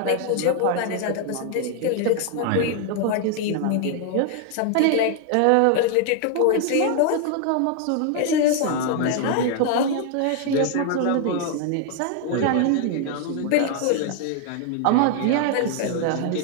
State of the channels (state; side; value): different; both; correlation 0.00